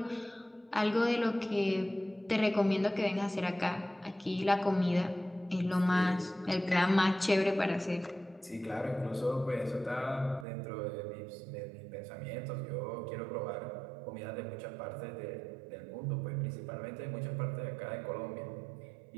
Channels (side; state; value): left; drops out; at 10.5 s